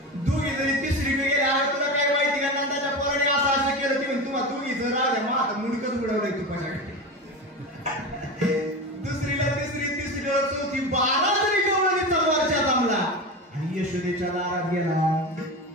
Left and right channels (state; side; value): normal; both; correlation 0.24